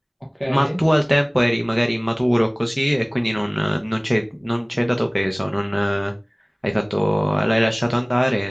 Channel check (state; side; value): identical; both; correlation 1.00